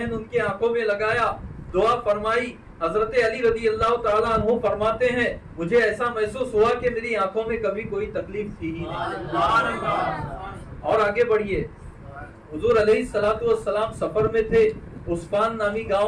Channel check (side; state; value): both; identical; correlation 1.00